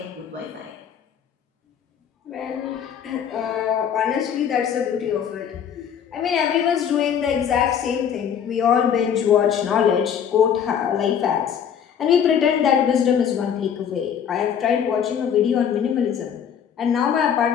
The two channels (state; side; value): quieter; right; 8.2 dB